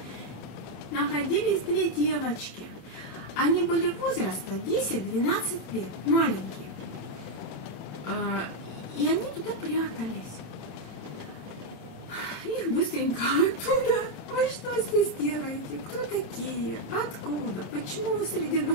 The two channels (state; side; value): late; right; 27 ms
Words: находились 2 девочки. Они были возраста 10-12 лет, маленькие. И они туда прятались. Их быстренько оттуда. Вы что здесь делаете? Кто такие? Откуда? Почему вы среди